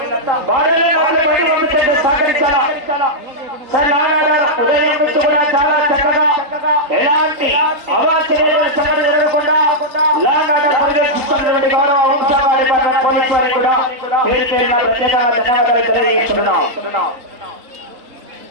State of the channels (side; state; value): left; late; 3.8 ms